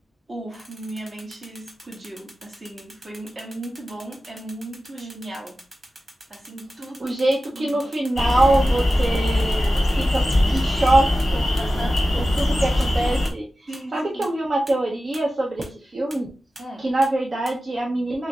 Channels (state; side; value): normal; both; correlation 0.94